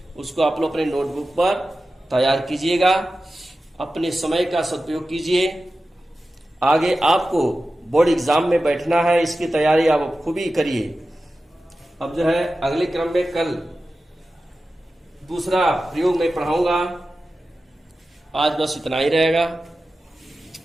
उसको आप लोग अपने नोटबुक पर तैयार कीजिएगा। अपने समय का सदुपयोग कीजिए। आगे आपको बोर्ड एग्जाम में बैठना है, इसकी तैयारी आप खूब ही करिए। अब जो है अगले क्रम में कल दूसरा प्रयोग में पढ़ाऊंगा। आज बस इतना ही रहेगा।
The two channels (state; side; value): normal; both; correlation 0.94